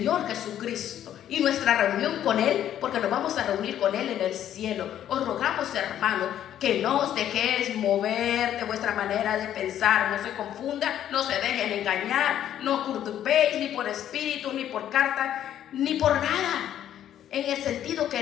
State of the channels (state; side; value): quieter; right; 10.9 dB